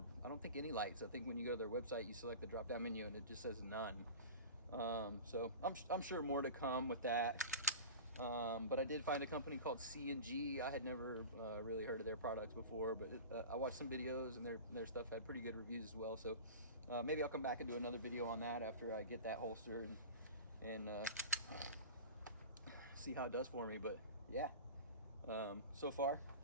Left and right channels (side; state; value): both; inverted; correlation -0.33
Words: I don't think any lights. I think when you go to their website, you select the drop-down menu and it just says none. So I'm sure more to come with that. But I did find a company called C&G. I had never really heard of their products before, but I watched some videos, and their stuff had pretty good reviews as well. So maybe I'll come back and do another video on that after I get that holster and see how it does for me. But yeah, so far